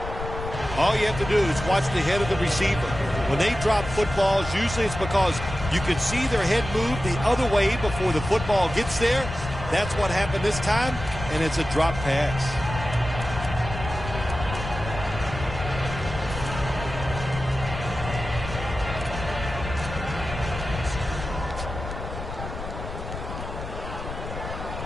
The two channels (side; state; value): left; noise; rumble, 8 dB below the sound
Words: All you have to do is watch the head of the receiver. When they drop footballs, usually it's because you can see their head move the other way before the football gets there. That's what happened this time, and it's a drop pass.